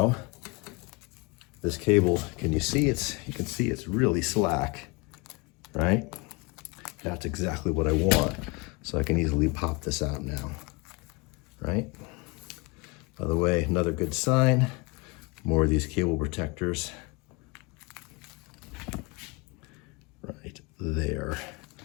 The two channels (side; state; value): right; quieter; 27.2 dB